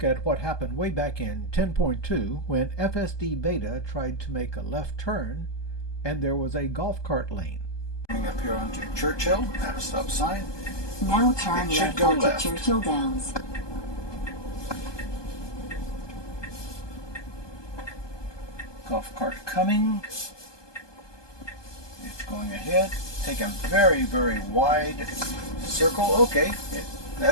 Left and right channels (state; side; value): late; right; 1.2 ms